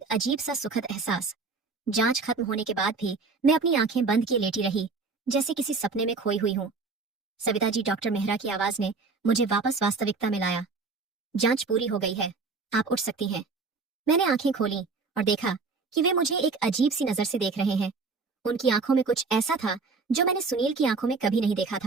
अजीब सा सुखद एहसास। जांच खत्म होने के बाद भी मैं अपनी आंखें बंद किए लेटी रही, जैसे किसी सपने में खोई हुई हूं। सविता जी, डॉक्टर मेहरा की आवाज ने मुझे वापस वास्तविकता में लाया। जांच पूरी हो गई है, आप उठ सकती हैं। मैंने आंखें खोली और देखा कि वे मुझे एक अजीब सी नजर से देख रहे हैं। उनकी आंखों में कुछ ऐसा था जो मैंने सुनील की आंखों में कभी नहीं देखा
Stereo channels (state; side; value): quieter; left; 4.3 dB